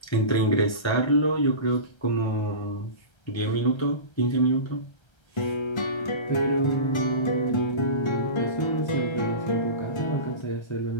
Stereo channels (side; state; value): right; late; 1.3 ms